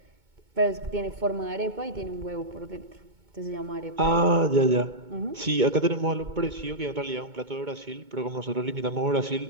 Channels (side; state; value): left; late; 2.2 ms